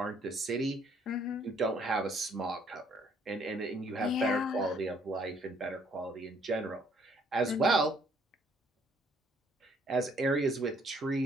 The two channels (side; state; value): both; normal; correlation 0.64